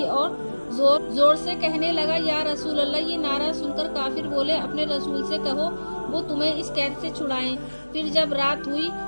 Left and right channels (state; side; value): inverted; both; correlation -1.00